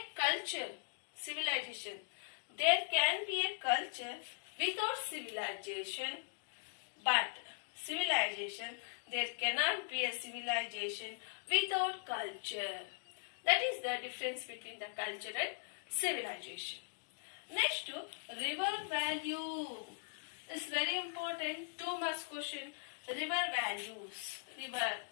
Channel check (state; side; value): silent; right; digital silence